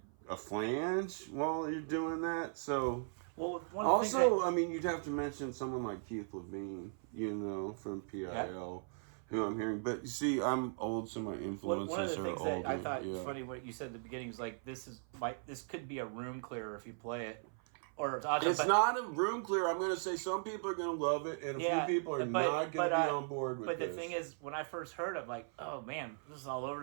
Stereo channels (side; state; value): left; silent; 52 dB below the other